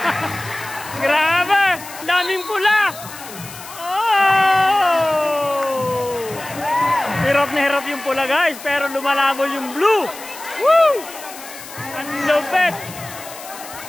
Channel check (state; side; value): noise; left; hiss, 15 dB below the sound